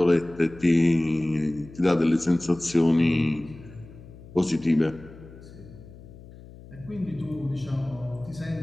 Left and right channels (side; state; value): left; noise; hum, 19 dB below the sound